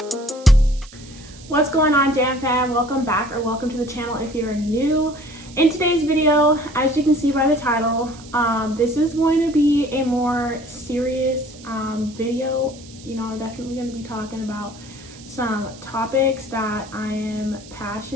What's going on, JAMFAM? Welcome back, or welcome to the channel if you're new. In today's video, as you can see by the title, this is going to be a more serious video. You know, I'm definitely going to be talking about some topics that I am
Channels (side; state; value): right; noise; hiss, 20 dB below the sound